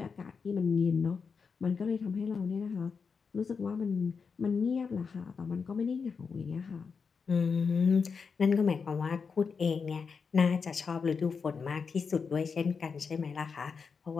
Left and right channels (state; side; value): quieter; right; 5.5 dB